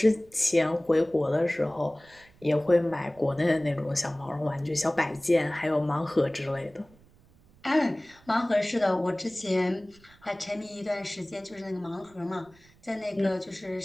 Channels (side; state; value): right; noise; rumble, 28 dB below the sound